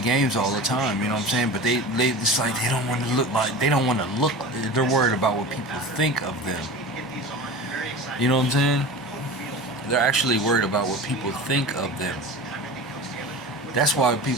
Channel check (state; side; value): normal; both; correlation 0.33